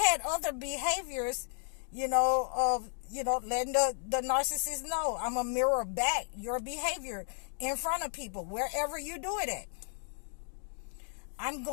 had other behaviors, of, letting the narcissist know I'm a mirror back your behavior in front of people, wherever you do it at. I'm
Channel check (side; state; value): right; silent; digital silence